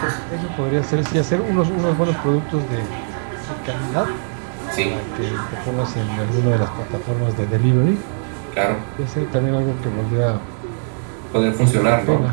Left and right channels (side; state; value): left; silent; digital silence